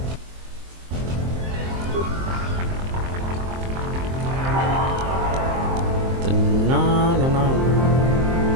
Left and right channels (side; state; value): left; late; 23 ms